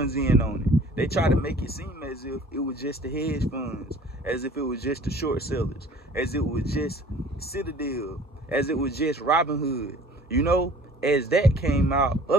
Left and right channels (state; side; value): normal; both; correlation 0.49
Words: in on it. They try to make it seem as if it was just the hedge funds, as if it was just the short sellers, as it was just Citadel, as it was just Robinhood. You know, as that came out,